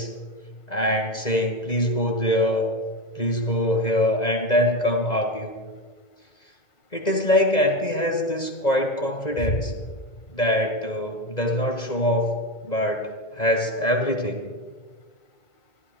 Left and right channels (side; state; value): right; late; 2.0 ms